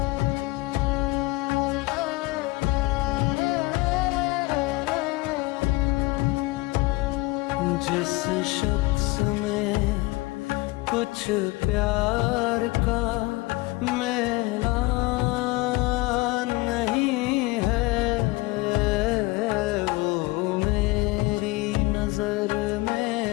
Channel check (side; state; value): right; quieter; 22.2 dB